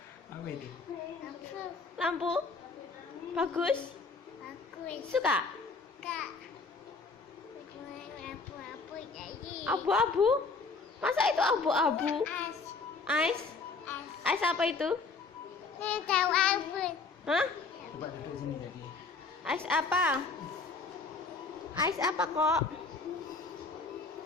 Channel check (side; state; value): right; quieter; 4.3 dB